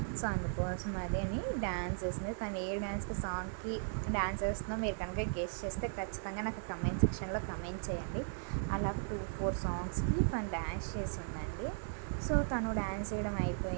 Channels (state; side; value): silent; left; digital silence